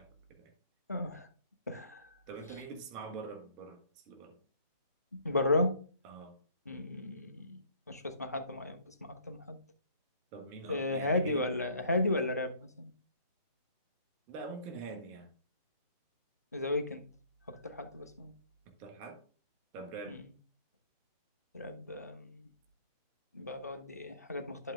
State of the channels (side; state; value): both; inverted; correlation -0.57